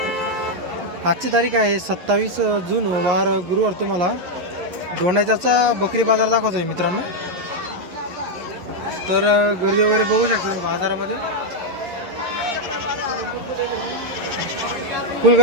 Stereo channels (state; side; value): late; left; 11 ms